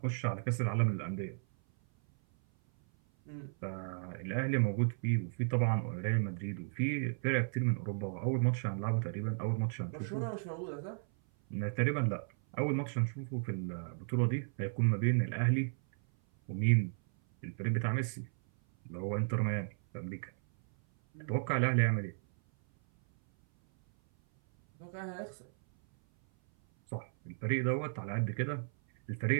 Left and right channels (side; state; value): left; silent; 55 dB below the other